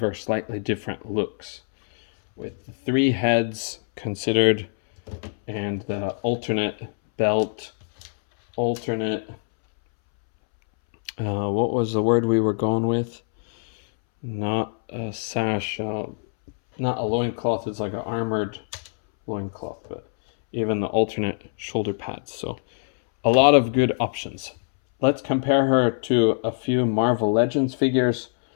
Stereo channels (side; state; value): right; silent; 63 dB below the other